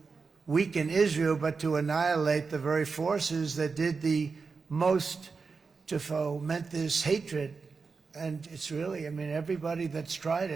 weaken Israel, but to annihilate the very forces that did the most to foment this hatred. And it's really, I mean, everybody that's tried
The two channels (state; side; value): quieter; left; 4.8 dB